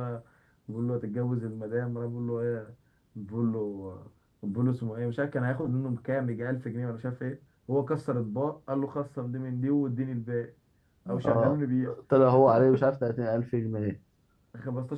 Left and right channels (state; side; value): identical; both; correlation 1.00